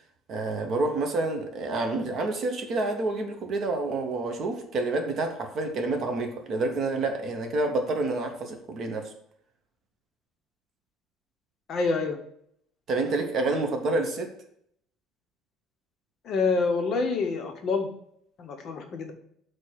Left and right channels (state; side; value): normal; both; correlation 0.57